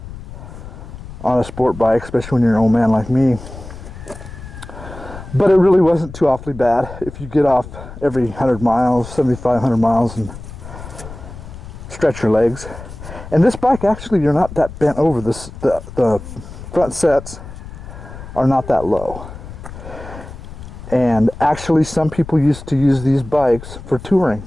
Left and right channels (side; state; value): left; noise; rumble, 13 dB below the sound